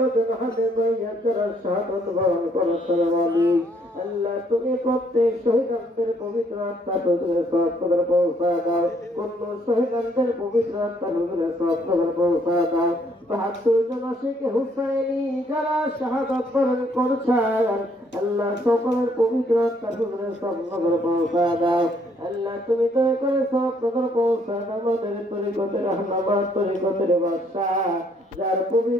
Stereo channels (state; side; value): normal; both; correlation 0.68